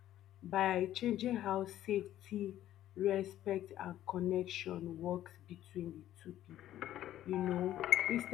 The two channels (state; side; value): quieter; right; 12.7 dB